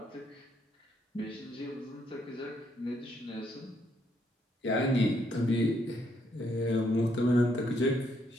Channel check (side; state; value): both; normal; correlation 0.73